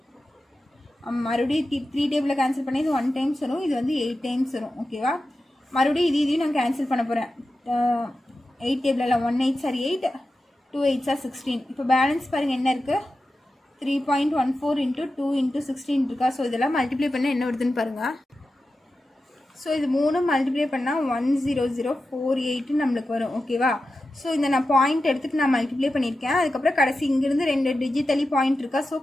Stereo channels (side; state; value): both; normal; correlation 0.92